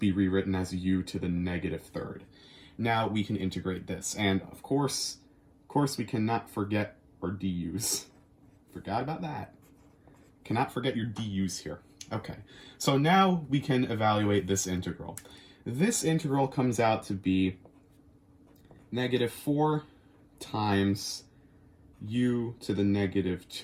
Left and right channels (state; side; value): identical; both; correlation 1.00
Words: rewritten as u to the negative third. Now we can integrate this, and of course we cannot forget our du's. Forgot about that. Cannot forget your du's here. Okay, so now we can evaluate this integral. This integral comes out to be negative 4 times u to the negative